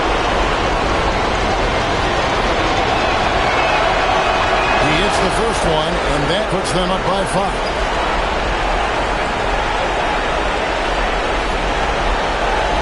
Puts them up by 5.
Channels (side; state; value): both; identical; correlation 1.00